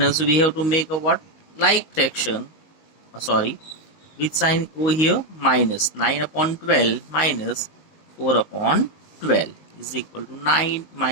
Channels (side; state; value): right; late; 19 ms